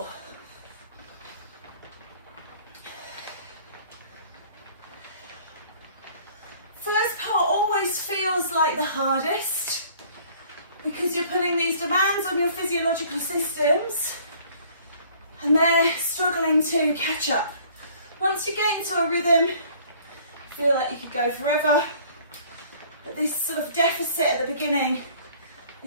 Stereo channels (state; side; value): inverted; both; correlation -0.54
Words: First part always feels like the hardest because you're putting these demands on your physiological systems and they're struggling to catch up. Once you get into a rhythm, feel like you could go forever, but this sort of deficit at the beginning